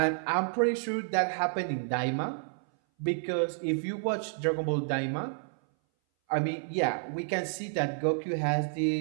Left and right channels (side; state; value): left; silent; 57 dB below the other